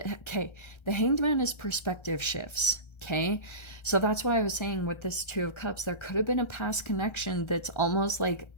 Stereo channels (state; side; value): late; right; 1.3 ms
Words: okay, the Hanged Man is perspective shifts. Okay, so that's why I was saying with this Two of Cups, there could have been a past connection that's almost like